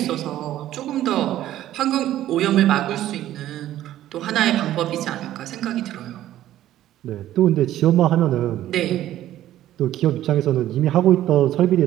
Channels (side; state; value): left; quieter; 13.2 dB